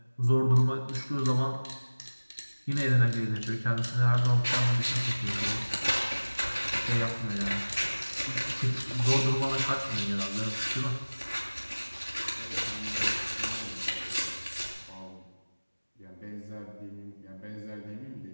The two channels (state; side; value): inverted; both; correlation -1.00